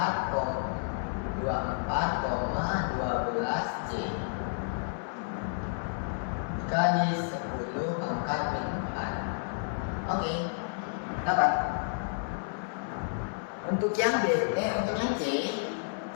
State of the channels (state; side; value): silent; right; digital silence